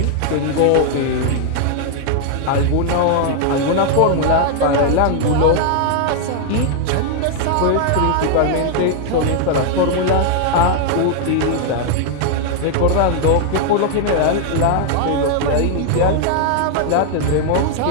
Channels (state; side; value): different; both; correlation 0.00